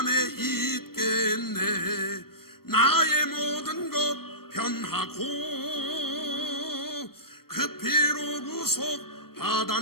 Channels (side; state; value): right; late; 0.94 ms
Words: 있겠네. 나의 모든 것 변하고 그 피로 구속